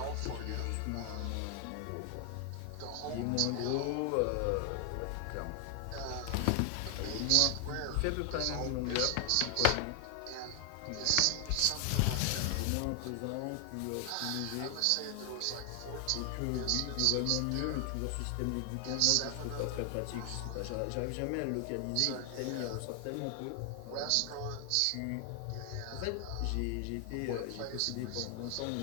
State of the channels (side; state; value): both; different; correlation 0.00